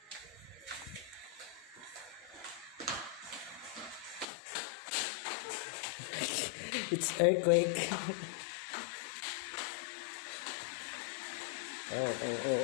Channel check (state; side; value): drops out; right; at 4.2 s